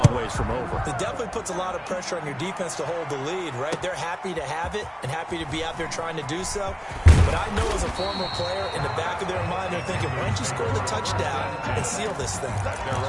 ways from over. It definitely puts a lot of pressure on your defense to hold the lead, right? They're happy to have it and happy to be out there trying to do so. But I know as a former player, in the back of their mind, they're thinking, why don't you score the touchdown and seal this thing? At their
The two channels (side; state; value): both; identical; correlation 1.00